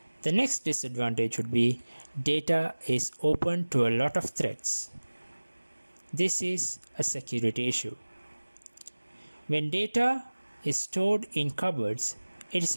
The next disadvantage would be data is open to a lot of threats. This is a security issue. When data is stored in cupboards, it is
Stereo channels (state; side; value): inverted; both; correlation -1.00